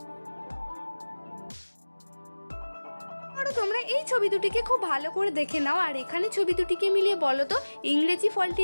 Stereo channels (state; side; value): inverted; both; correlation -1.00